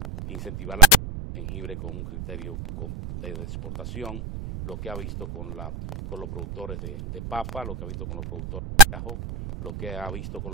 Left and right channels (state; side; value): noise; right; rumble, 9 dB below the sound